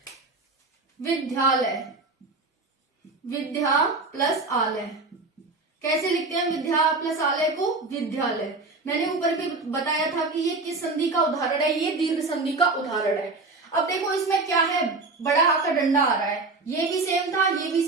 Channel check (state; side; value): quieter; left; 3.6 dB